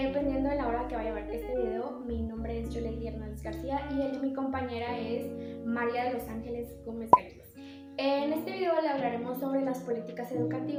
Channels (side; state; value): both; identical; correlation 1.00